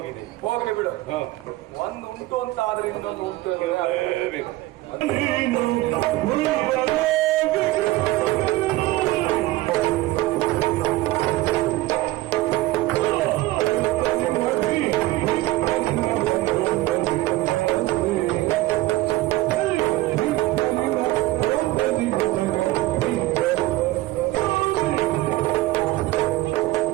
ಹೋಗ್ಲಿ ಬಿಡು. ಹ. ಒಂದು ಉಂಟು ಅಂತ ಆದ್ರೆ ಇನ್ನೊಂದು ಉಂಟು. ಇರಲೇಬೇಕು.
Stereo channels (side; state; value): left; quieter; 17.7 dB